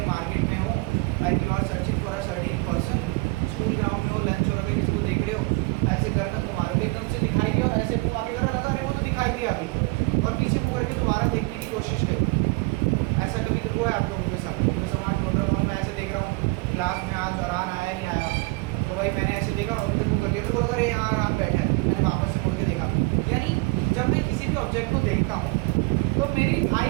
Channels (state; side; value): quieter; left; 25.2 dB